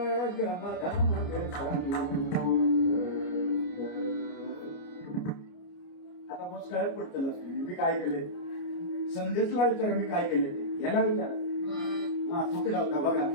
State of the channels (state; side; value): late; right; 29 ms